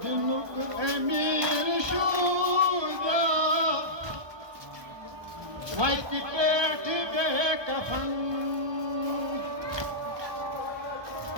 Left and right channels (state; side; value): late; left; 1.2 ms